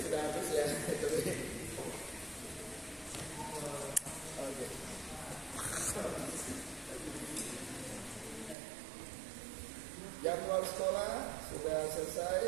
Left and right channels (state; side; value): drops out; left; at 8.6 s